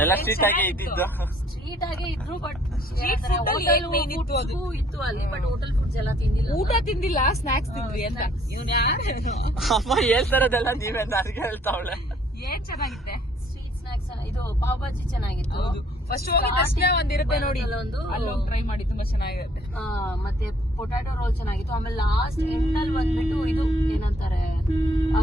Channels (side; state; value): both; normal; correlation 0.61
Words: ಸ್ಟ್ರೀಟ್ ಆಗೇ ಇದ್ದಿದ್ದು. ಸ್ಟ್ರೀಟ್ ಆಗೇ ಇದ್ರು. ಬಟ್ ಇತ್ತು ಇತ್ತು ಅಲ್ಲಿ. ಬಟ್ ಹೋಟೆಲ್ ಫುಡ್ಸ್ ಎಲ್ಲ ತಿಂದಿಲ್ಲ. ಊಟ ತಿಂದಿಲ್ಲ, ಸ್ನಾಕ್ಸ್ ತಿಂದ್ವಿ ಅಂತ. ಅಮ್ಮ ಹೇಳ್ತಾರದೆಲ್ಲ ನೀವೇ ನನಗೆ ಹೇಳ್ತಾವಳೆ. ಏನ್ ಚೆನ್ನಾಗಿತ್ತೆ ಸ್ಟ್ರೀಟ್ ಸ್ನಾಕ್ಸ್. ಇದು ಪಾವ್ ಭಾಜಿ ಚೆನ್ನಾಗಿತ್ತು. ಫಸ್ಟ್ ಹೋಗಿದ ತಕ್ಷಣ ಒಂದಿರುತ್ತೆ ನೋಡಿ, ಅಲ್ಲೊಂದು ಟ್ರೈ ಮಾಡಿ, ತುಂಬಾ ಚೆನ್ನಾಗಿರುತ್ತೆ. ಮತ್ತೆ ಪೊಟ್ಯಾಟೊ ರೋಲ್ ಚೆನ್ನಾಗಿತ್ತು. ಆಮೇಲೆ ಲಾಸ್ಟ್ ಎಂಡ್ ಅಲ್ಲಿ ಬಂದ್ಬಿಟ್ಟು ಇದು ಏನಂತಾರೆ,